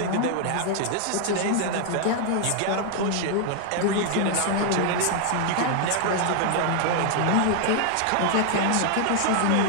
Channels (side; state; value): both; different; correlation 0.00